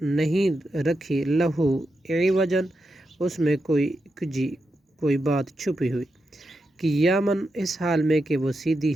نہیں رکھی لہو عوجن اس میں کوئی کجی کوئی بات چھپی ہوئی قیاماً اس حال میں کہ وہ سیدھی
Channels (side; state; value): both; normal; correlation 0.86